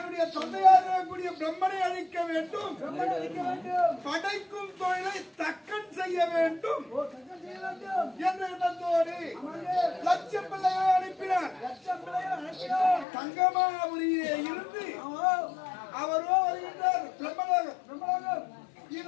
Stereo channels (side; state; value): right; drops out; at 13.1 s